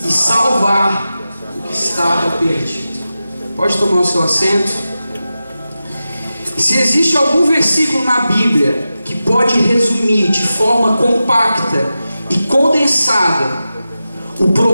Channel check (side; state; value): both; inverted; correlation -0.93